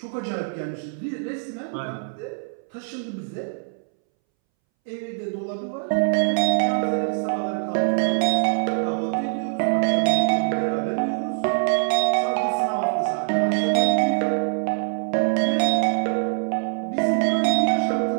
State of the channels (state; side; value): silent; left; 63 dB below the other